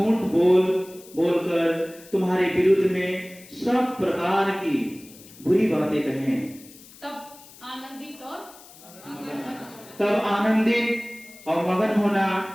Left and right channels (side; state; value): left; noise; hiss, 21 dB below the sound